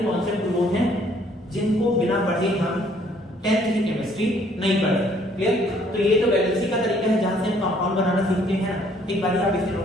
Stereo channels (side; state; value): both; normal; correlation 0.63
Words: कॉन्सेप्ट वो हैं जिनको बिना पढ़े हम 10th की केमिस्ट्री नहीं पढ़ते, क्लियर? तो ये तो वैलेंसी का तरीका है जहां से हम कंपाउंड बनाना सीखते हैं। एक बार आप इसे